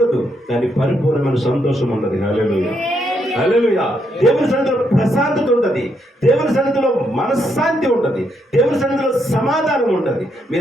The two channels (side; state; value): both; normal; correlation 0.77